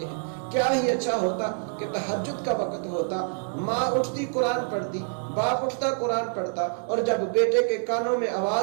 ہیں۔ کیا ہی اچھا ہوتا کہ تہجد کا وقت ہوتا، ماں اٹھتی قرآن پڑھتی، باپ اٹھتا قرآن پڑھتا، اور جب بیٹے کے کانوں میں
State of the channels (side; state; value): left; silent; digital silence